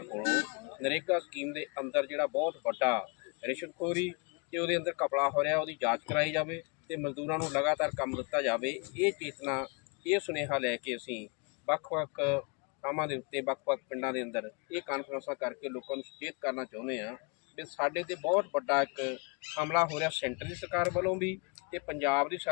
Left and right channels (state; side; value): quieter; right; 33.0 dB